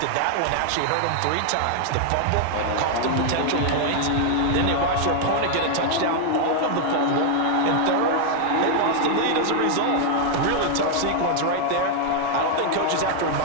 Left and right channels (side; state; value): both; different; correlation 0.00